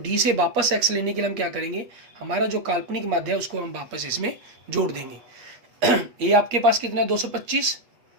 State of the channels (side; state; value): left; late; 8.4 ms